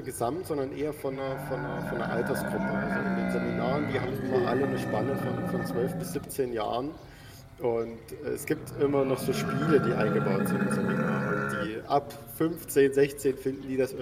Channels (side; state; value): both; identical; correlation 1.00